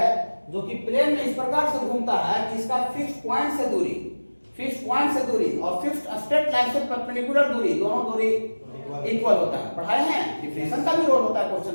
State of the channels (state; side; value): inverted; both; correlation -1.00